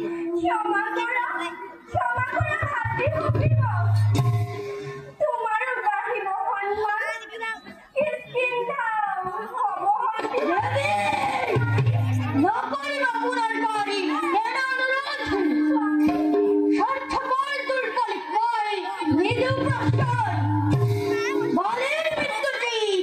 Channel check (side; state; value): both; identical; correlation 1.00